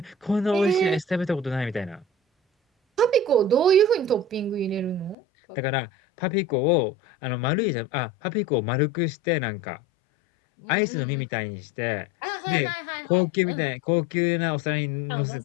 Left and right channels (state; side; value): drops out; right; at 5.2 s